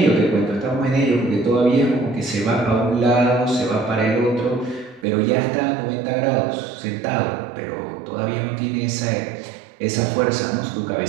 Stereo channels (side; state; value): left; drops out; at 5.1 s